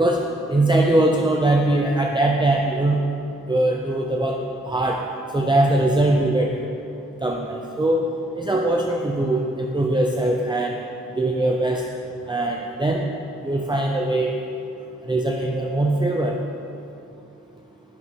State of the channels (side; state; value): both; normal; correlation 0.71